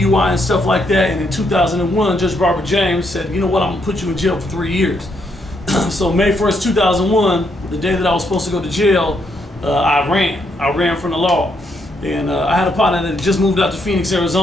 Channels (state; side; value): normal; both; correlation 0.76